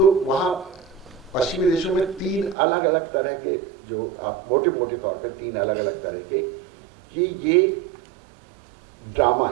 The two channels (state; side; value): drops out; left; at 2.6 s